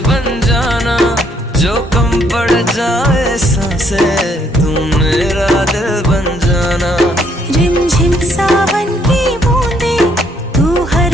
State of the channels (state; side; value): normal; both; correlation 0.69